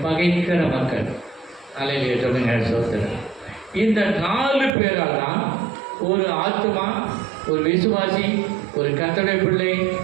பகைக்கிற மக்கள். அல்லேலூயா சொல்லுங்க. சோதரன். இந்த 4 பேரால் தான் ஒரு ஆத்மா, ஒரு விசுவாசி, ஒரு கர்த்தருடைய பிள்ளை,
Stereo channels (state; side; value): drops out; left; at 4.8 s